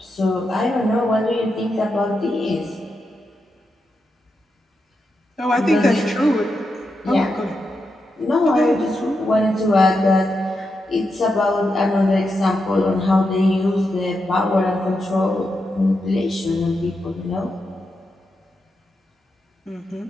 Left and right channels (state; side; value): normal; both; correlation 0.86